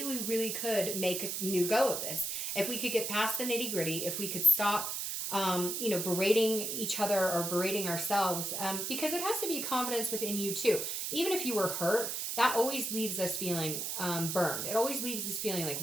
we really could make a new go of this. If we could get past the nitty gritty, if we could stop, berating each other or berating ourselves, because it has to be confidence within you too. Even if you were hurt, that always leaves us feeling burned. It always leaves us feeling like,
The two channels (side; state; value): right; noise; hiss, 2 dB below the sound